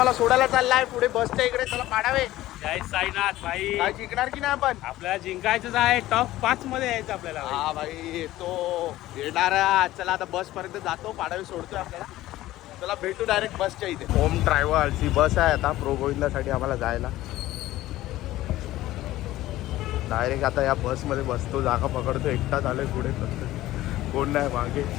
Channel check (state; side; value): quieter; right; 15.8 dB